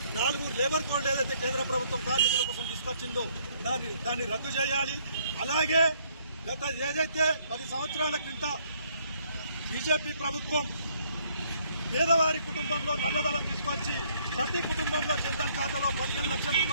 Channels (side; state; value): both; inverted; correlation -0.66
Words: 4 లేబర్ కోడ్లు ఏదైతే కేంద్ర ప్రభుత్వం కార్మికుల కోసం తీసుకొచ్చిందో దాన్ని రద్దు చేయాలి. అలాగే గత ఏదైతే 10 సంవత్సరాల క్రింద బీజేపీ ప్రభుత్వం పేదవారి కుటుంబంలో నల్లధనం తీసుకొచ్చి ప్రతి కుటుంబంలో జన్ధన్ ఖాతాలో 15 లక్షల